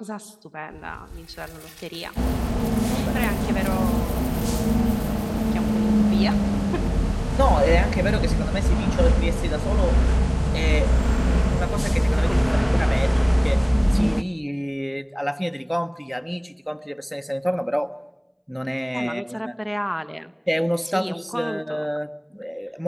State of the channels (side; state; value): both; identical; correlation 1.00